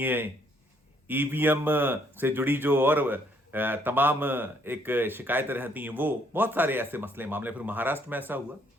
ईवीएम से जुड़ी जो और तमाम एक शिकायतें रहती हैं, वो बहुत सारे ऐसे मसले मामले। फिर महाराष्ट्र में ऐसा हुआ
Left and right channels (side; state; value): both; normal; correlation 0.67